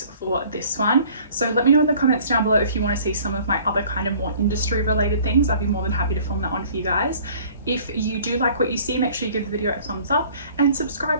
for this one. So let me know in the comments down below if you want to see some of my other kind of more industry related things. I'd be more than happy to film that one for you guys. If you do like what you see, make sure you give the video a thumbs up and subscribe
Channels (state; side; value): inverted; both; correlation -0.52